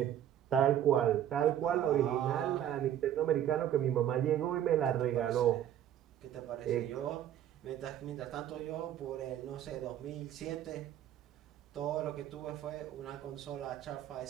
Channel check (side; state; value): left; quieter; 10.9 dB